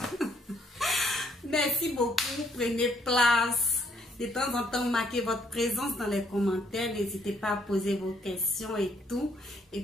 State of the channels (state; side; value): normal; both; correlation 0.68